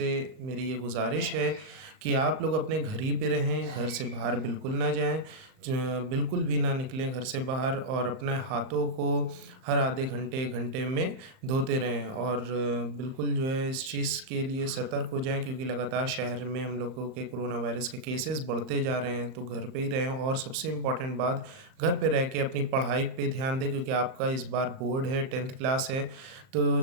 मेरी ये गुजारिश है कि आप लोग अपने घर ही पे रहें, घर से बाहर बिल्कुल ना जाएं, बिल्कुल भी ना निकलें घर से बाहर, और अपने हाथों को हर आधे घंटे एक घंटे में धोते रहें। और बिल्कुल जो है इस चीज़ के लिए सतर्क हो जाएं, क्योंकि लगातार शहर में हम लोगों के कोरोना वायरस के केसेस बढ़ते जा रहे हैं। तो घर पे ही रहें, और सबसे इम्पॉर्टेंट बात, घर पे रह के अपनी पढ़ाई पे ध्यान दें, क्योंकि आपका इस बार बोर्ड है, 10th क्लास है। तो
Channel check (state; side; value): late; left; 38 ms